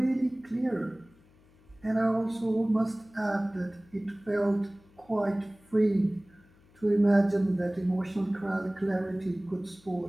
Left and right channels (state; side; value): noise; left; hum, 29 dB below the sound